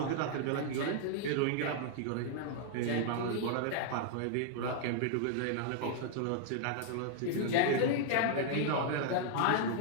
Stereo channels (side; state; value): both; different; correlation -0.01